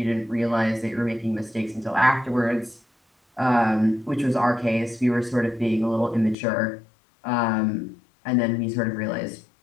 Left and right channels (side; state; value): right; drops out; at 6.4 s